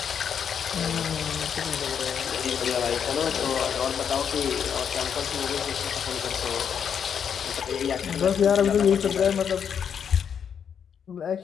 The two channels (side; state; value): right; quieter; 7.7 dB